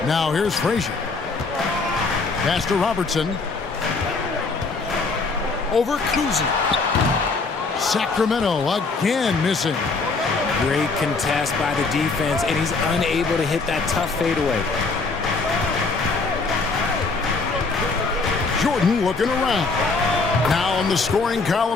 Now here's Frazier. Pass to Robertson. Over Kuzi. Sacramento again missing. Great contest by the defense, and he's unable to hit that tough fadeaway. Jordan looking around. Now on the scoring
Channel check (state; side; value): quieter; right; 4.0 dB